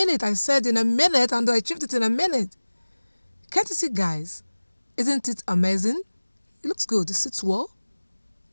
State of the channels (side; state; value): both; inverted; correlation -1.00